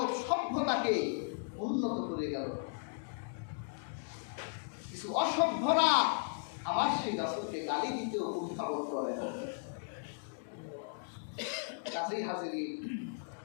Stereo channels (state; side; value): silent; right; digital silence